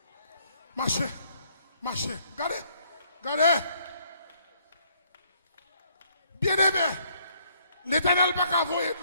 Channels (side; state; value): both; inverted; correlation -0.67